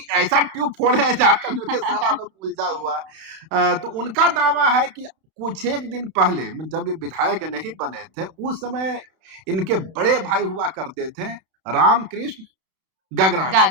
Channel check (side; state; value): left; late; 32 ms